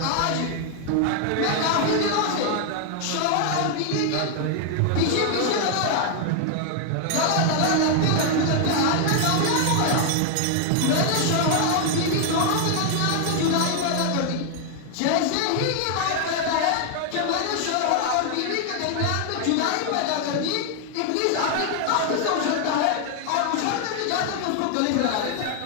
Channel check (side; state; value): both; different; correlation 0.00